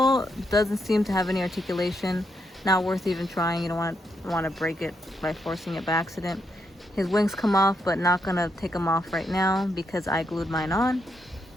doesn't seem to have any articulation. Not worth even trying. You don't want to break it by forcing it by accident. His wings come off, but not gonna take them off right now because I glued mine on.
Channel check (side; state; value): both; normal; correlation 0.79